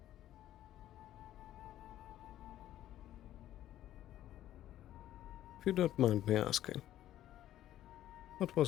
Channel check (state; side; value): quieter; right; 12.8 dB